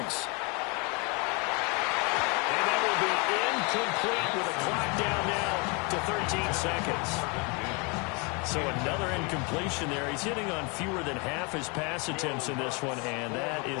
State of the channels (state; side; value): quieter; right; 31.3 dB